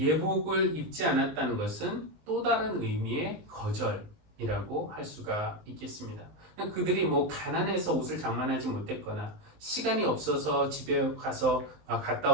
입지 않았다는 것은 또 다른 의미의 거절이라고 할 수가 있겠습니다. 그들이 뭐 가난해서 옷을 장만하지 못했거나 시간이 없어서 집에 가서 갔다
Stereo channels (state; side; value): late; left; 19 ms